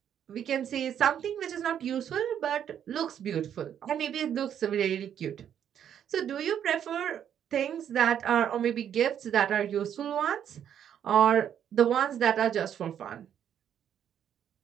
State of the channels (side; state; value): left; quieter; 9.3 dB